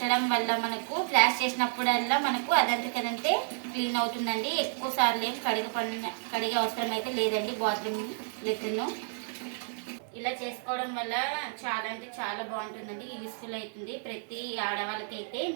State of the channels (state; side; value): silent; left; 57 dB below the other